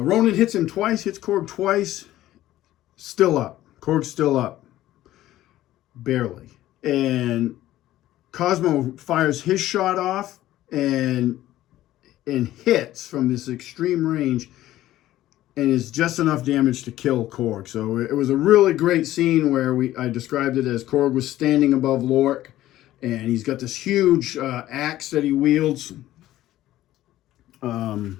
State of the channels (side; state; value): right; quieter; 14.5 dB